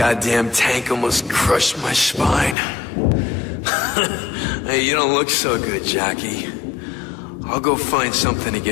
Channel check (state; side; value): drops out; right; at 2.6 s